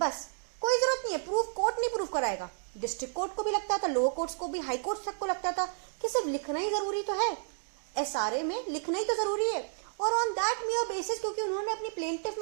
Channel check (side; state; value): left; silent; digital silence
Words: कोई जरूरत नहीं है प्रूफ. कोर्ट नहीं प्रूव कराएगा. डिस्ट्रिक्ट कोर्ट को भी लगता था, लोअर कोर्ट्स को भी, हाई कोर्ट तक को लगता था कि सिर्फ लिखना ही जरूरी तो है. एसआरए में लिखना ही तो जरूरी है. और ऑन दैट मेयर बेसिस, क्योंकि उन्होंने अपनी प्लेंटिफ